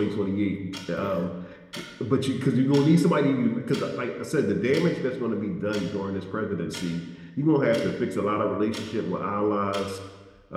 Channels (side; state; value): both; identical; correlation 1.00